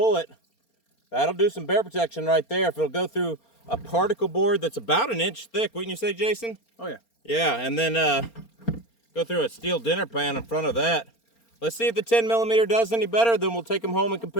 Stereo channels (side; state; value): right; late; 4.3 ms